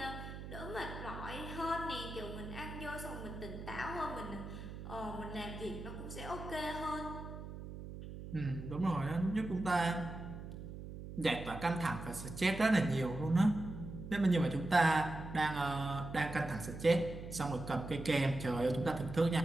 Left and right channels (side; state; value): right; noise; hum, 10 dB below the sound